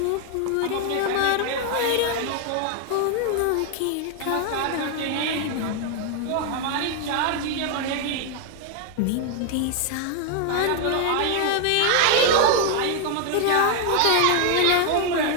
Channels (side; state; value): both; different; correlation 0.00